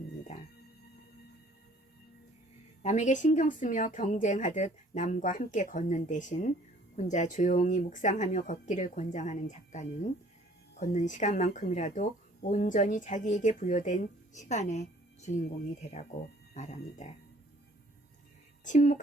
남에게 신경 쓰며 경쟁하듯 남과 함께 걷는 대신 혼자 조용히 묵상하며 걷기를 권장하는 작가는 걷는 시간만큼이라도 온전히 자기에게 부여된 시간의 주인공이 되라고 말합니다.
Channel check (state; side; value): normal; both; correlation 0.56